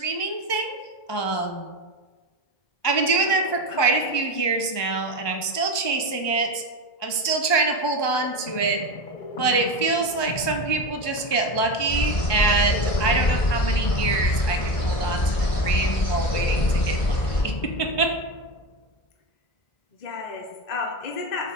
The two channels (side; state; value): right; late; 1.2 ms